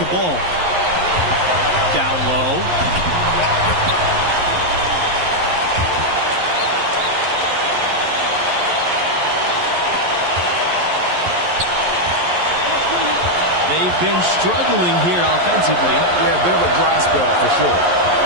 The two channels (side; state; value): left; late; 11 ms